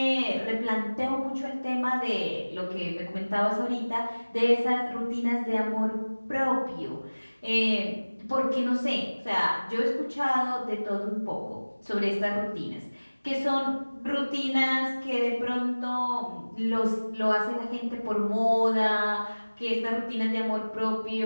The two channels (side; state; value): both; inverted; correlation -1.00